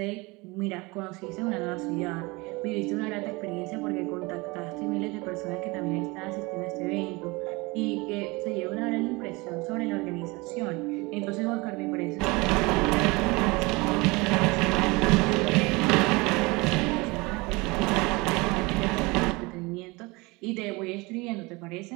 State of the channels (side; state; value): left; quieter; 24.7 dB